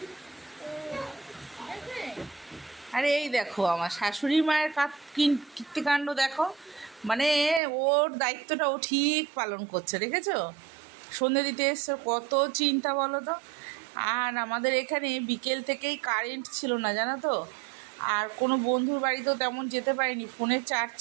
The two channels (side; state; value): left; drops out; at 7.6 s